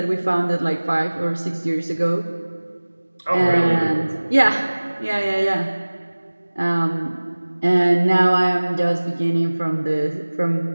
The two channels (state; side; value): inverted; both; correlation -1.00